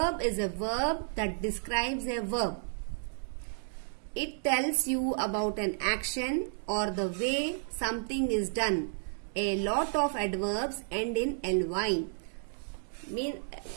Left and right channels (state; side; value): silent; left; 56 dB below the other